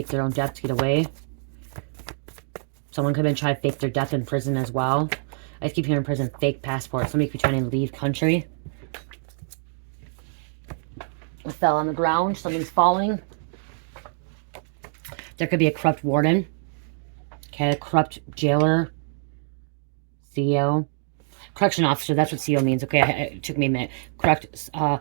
their own death to get away. Someone could have been trying to fake their death in prison as well. I keep hearing prison, fake passport. Somebody could be trying to leave country. It fell on the ground. Something's falling. There could be a corrupt warden. Okay, a corrupt jailer. CEO. Correction officer, that's what CEO means. Okay, it took me a minute. Correctional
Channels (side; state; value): left; silent; digital silence